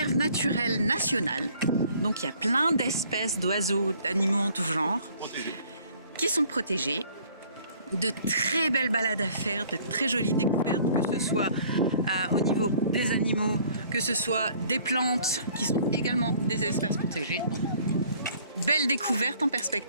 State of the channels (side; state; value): both; inverted; correlation -0.56